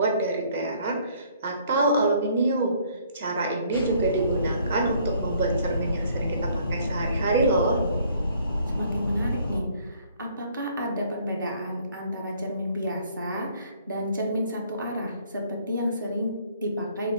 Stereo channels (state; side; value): inverted; both; correlation -0.61